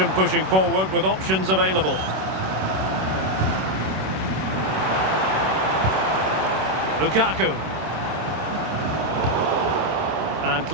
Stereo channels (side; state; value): left; late; 26 ms